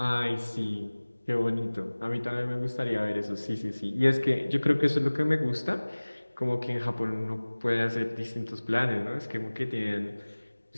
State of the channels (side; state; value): both; inverted; correlation -1.00